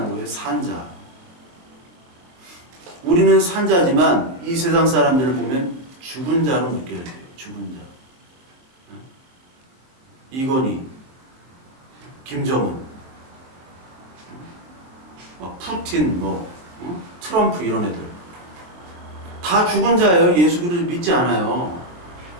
거예요. 산자. 우리는 산자지만 이 세상 사람들을 보면 죽은 자로 느껴야 돼요. 죽은 자. 이건희, 김정은, 푸틴, 트럼프 이런 애들 다 죽은 자예요. 예수 그리스도 믿지 않아요.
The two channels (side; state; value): left; late; 23 ms